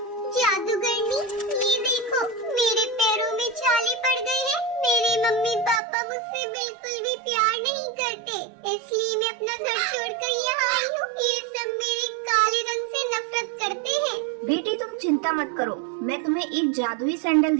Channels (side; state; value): left; drops out; at 5.8 s